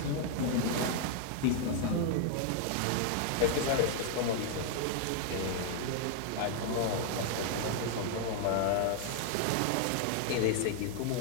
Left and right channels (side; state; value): both; different; correlation 0.00